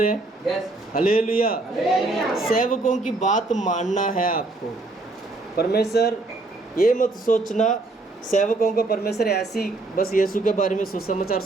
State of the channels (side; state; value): left; quieter; 3.1 dB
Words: हैं? यस। हालेलुया। सेवकों की बात मानना है आपको। परमेश्वर ये मत सोचना सेवकों को परमेश्वर ऐसी बस यीशु के बारे में सुसमाचार